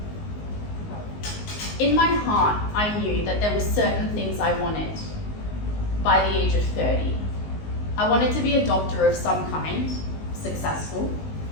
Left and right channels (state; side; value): late; right; 19 ms